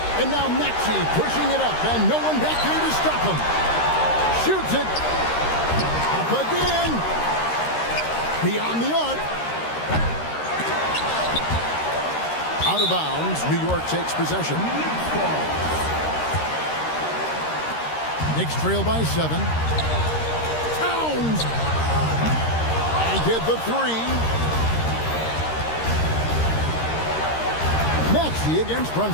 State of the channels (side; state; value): right; late; 13 ms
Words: And now Maxey pushing it up. And no one back there to stop him. Shoots it. Up again. Beyond the arc. Out of bounds. New York takes possession. Knicks trail by 7. Towns. And get the 3. Maxey against